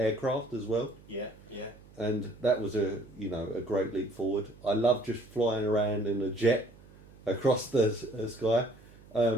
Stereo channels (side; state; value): right; noise; hum, 23 dB below the sound